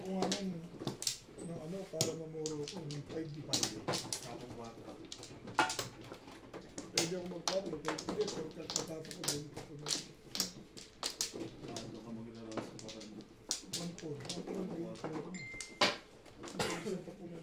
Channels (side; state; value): both; identical; correlation 1.00